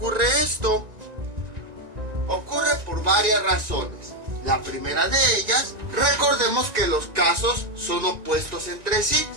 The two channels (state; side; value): late; left; 1.9 ms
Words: esto? Ocurre por varias razones. La primera de ellas, recordemos que los casos son opuestos entre sí.